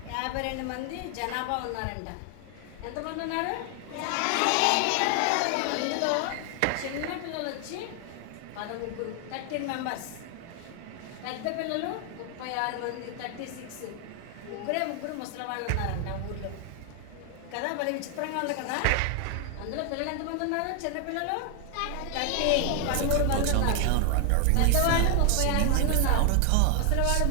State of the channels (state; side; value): different; both; correlation 0.00